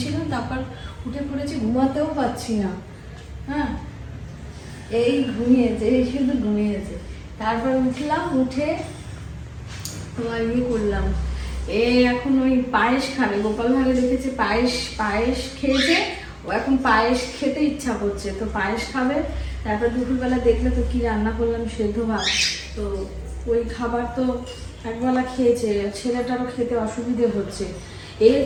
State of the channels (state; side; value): identical; both; correlation 1.00